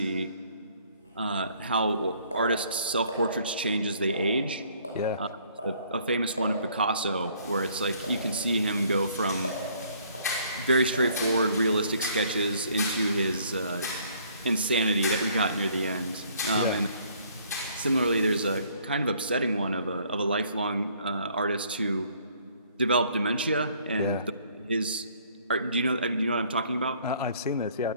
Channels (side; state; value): both; inverted; correlation -0.61